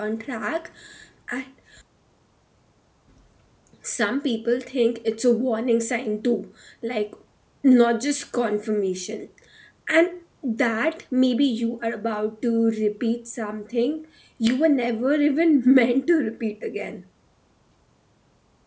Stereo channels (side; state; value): both; identical; correlation 1.00